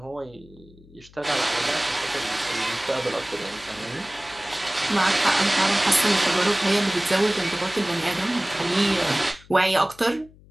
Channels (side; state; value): left; noise; hum, 25 dB below the sound